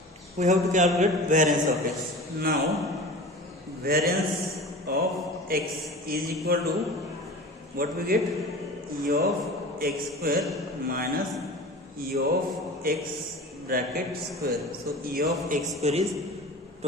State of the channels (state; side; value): normal; both; correlation 0.36